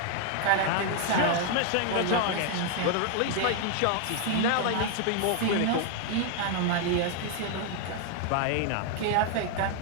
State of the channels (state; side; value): different; both; correlation 0.00